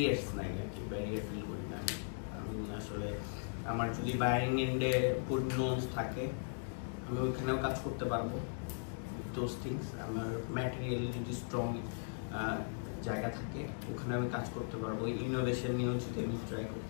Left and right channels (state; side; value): silent; right; digital silence